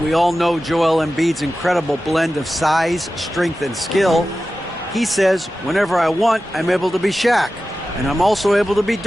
We all know Joel Embiid's incredible blend of size, strength, and skill. He says, whenever I want, I'm able to be Shaq. And I'm also able to be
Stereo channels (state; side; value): normal; both; correlation 0.94